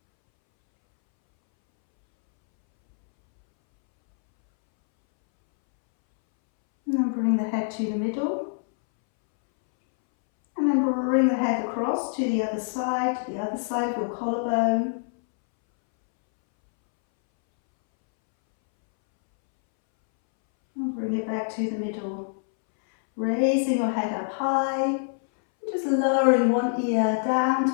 And then bring the head to the middle. And then bring the head across to the other side of your collarbone. And bring it back to the middle. Raising your head up high, just lowering one ear down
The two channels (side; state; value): right; silent; 62 dB below the other